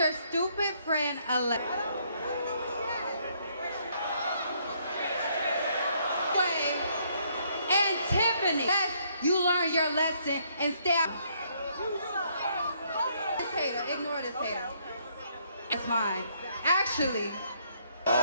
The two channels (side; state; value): both; inverted; correlation -0.69